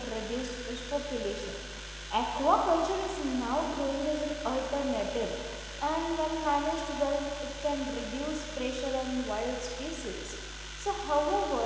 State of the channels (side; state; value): both; identical; correlation 1.00